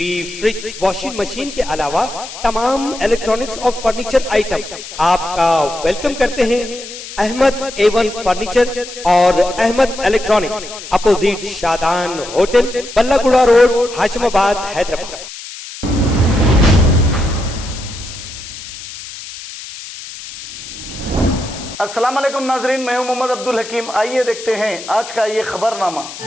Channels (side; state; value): left; noise; hiss, 12 dB below the sound